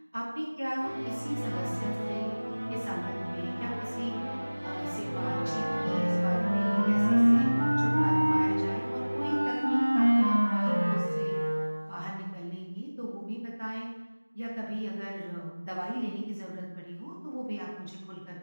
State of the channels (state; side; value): inverted; both; correlation -1.00